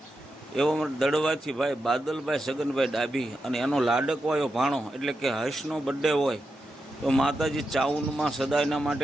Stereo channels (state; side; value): normal; both; correlation 0.88